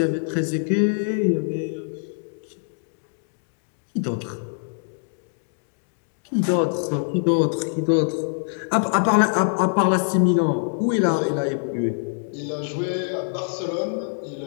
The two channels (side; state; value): right; silent; digital silence